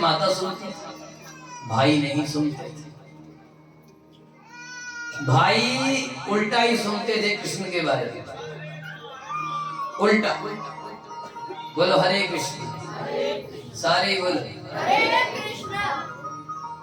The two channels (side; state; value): both; identical; correlation 1.00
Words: माता सुनती थी, भाई नहीं सुनते थे। भाई उल्टा ही सुनते थे कृष्ण के बारे में, उल्टा। बोलो हरे कृष्ण, सारे बोलो हरे कृष्ण।